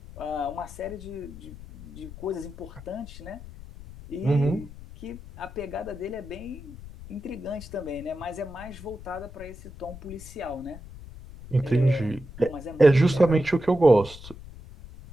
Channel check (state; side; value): noise; left; rumble, 15 dB below the sound